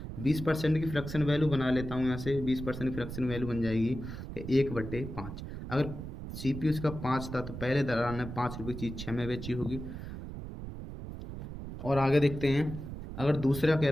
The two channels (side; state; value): right; noise; rumble, 9 dB below the sound